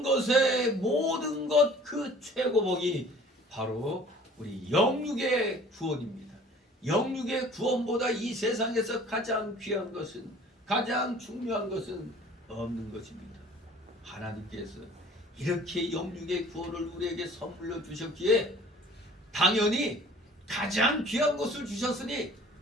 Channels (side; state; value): both; normal; correlation 0.50